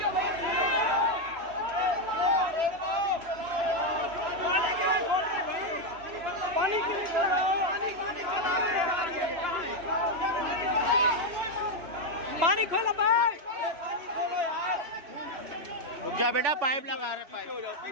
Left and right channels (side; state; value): left; late; 3.0 ms